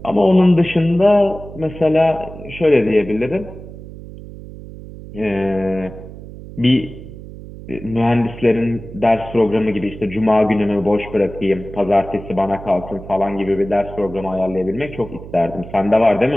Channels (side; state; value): right; noise; hum, 14 dB below the sound